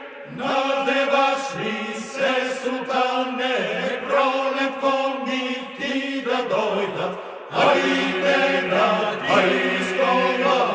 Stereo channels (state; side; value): identical; both; correlation 1.00